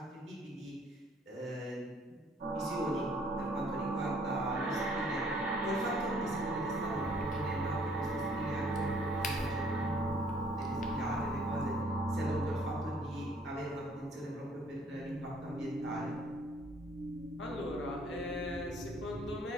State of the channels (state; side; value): normal; both; correlation 0.60